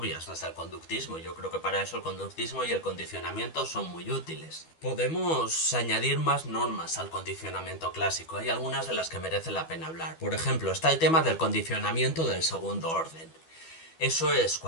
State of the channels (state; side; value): late; right; 12 ms